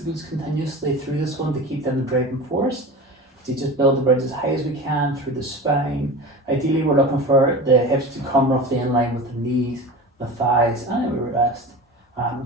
the glutes continuously through this one to keep them the driving force. So you just build the bridge as high as we can through the spine. Ideally, we're looking for the hips to come roughly in line with the knees, the thighs, and then we rest and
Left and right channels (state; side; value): normal; both; correlation 0.32